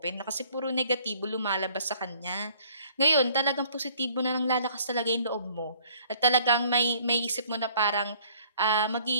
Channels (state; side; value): inverted; both; correlation -0.57